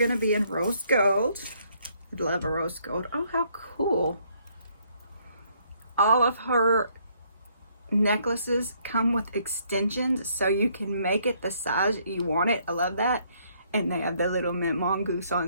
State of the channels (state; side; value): inverted; both; correlation -0.68